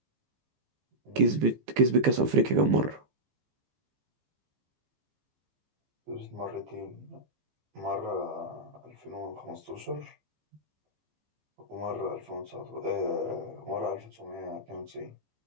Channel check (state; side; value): late; left; 15 ms